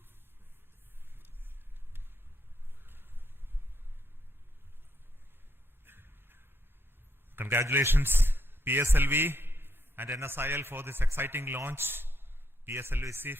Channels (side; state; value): both; normal; correlation 0.77